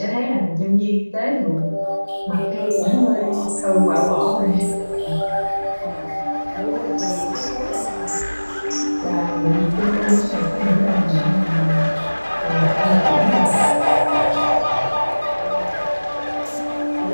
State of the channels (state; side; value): inverted; both; correlation -1.00